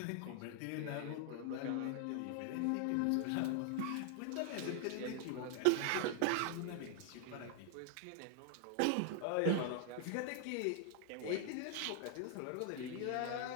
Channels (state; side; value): different; both; correlation 0.00